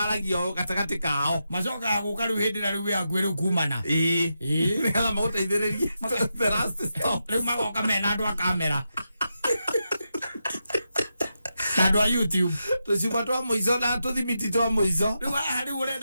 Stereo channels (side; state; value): both; inverted; correlation -0.87